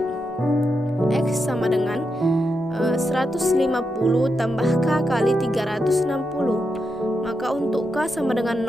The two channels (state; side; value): normal; both; correlation 0.85